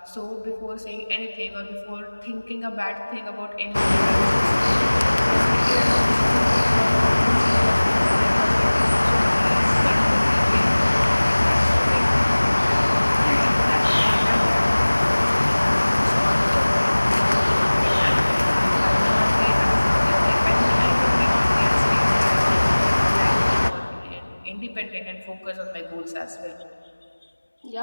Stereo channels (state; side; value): inverted; both; correlation -1.00